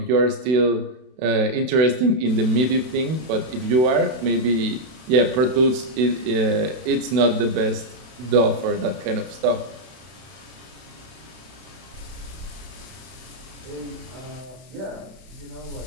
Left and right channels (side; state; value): left; late; 32 ms